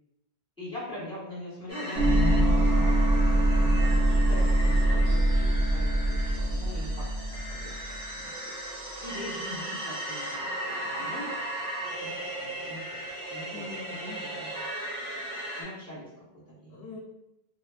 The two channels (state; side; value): normal; both; correlation 0.78